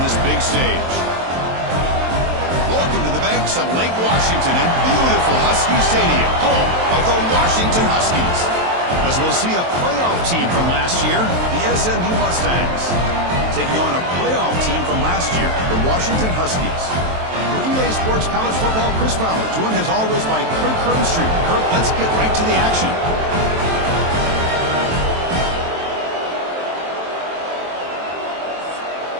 this big stage? Welcome to the banks of Lake Washington and beautiful Husky Stadium, home of the Washington Huskies. As we'll see a playoff team from last year, the SMU Mustangs, taking on a playoff team from last year, the Washington Huskies. For EA Sports College Football, Chris Fowler, joined as always by Kirk Herbstreit. Kirk, let's get right to the action.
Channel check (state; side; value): late; left; 23 ms